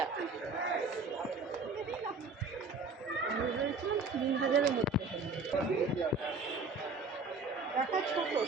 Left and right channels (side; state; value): left; quieter; 3.9 dB